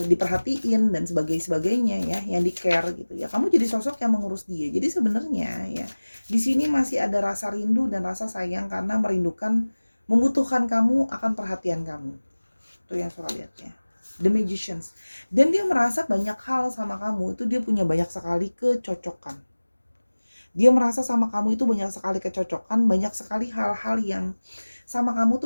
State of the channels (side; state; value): both; inverted; correlation -1.00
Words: diperhatiin dan sebagainya ya, yang di care gitu ya. Kamu jadi sosok yang mengurus dia. Jadi sebenarnya ya di sini masih ada rasa rindu dan rasa sayang karena membutuhkan kamu akan perhatian kamu. Itu yang Sora lihat ya. The Magicians. Dan dia merasa banyak hal sama kamu itu dia punya banyak sekali kecocokan. Dia merasa sama kamu itu banyak sekali kecocokan, banyak sekali hal-hal yang sama kamu